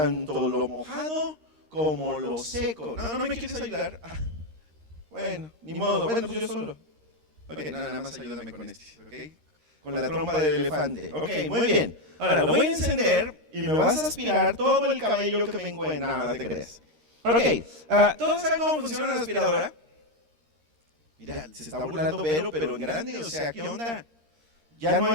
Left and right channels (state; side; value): late; left; 13 ms